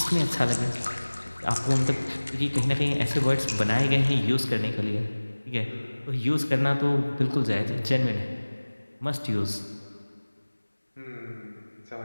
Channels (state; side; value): inverted; both; correlation -1.00